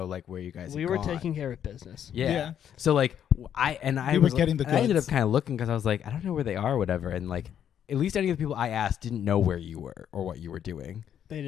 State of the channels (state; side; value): quieter; right; 9.4 dB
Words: like where you guys. We had were gone. taking care of business. Yeah. So like I We were was, getting the I ended up goods. kind of looking because I was like, I don't know where they are or whatever, and like at least any of the people I asked didn't know where you were or what you were doing. They